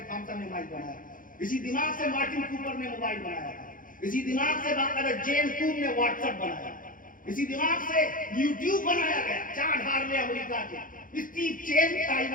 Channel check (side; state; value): right; late; 0.40 ms